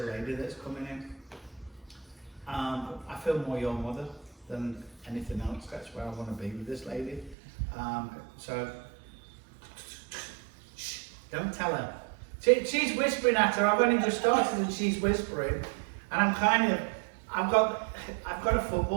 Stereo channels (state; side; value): drops out; left; at 7.4 s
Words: a lady that's coming in. I feel more your mother than anything else. That's where I want to be with this lady. So, shh, don't tell her. She's whispering at her. I've only just started and she's whispering. And I've got a